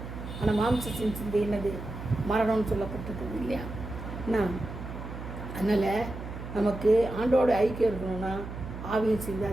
ஆனால் மாம்சத்தின் சிந்தை என்னது? மரணம்னு சொல்லப்பட்டிருக்குது இல்லையா. அதனால் நமக்கு ஆண்டோட ஐக்கியம் இருக்கணும்னா ஆவியின் சிந்தை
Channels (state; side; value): noise; right; hum, 9 dB below the sound